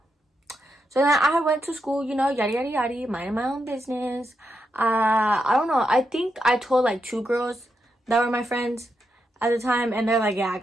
So then I went to school, you know, yada yada yada, minding my own business. I don't know, I think I told like 2 girls that were my friends at the time, and they're like, yeah, I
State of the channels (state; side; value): normal; both; correlation 0.84